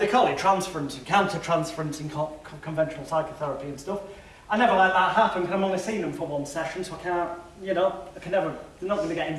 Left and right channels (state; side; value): identical; both; correlation 1.00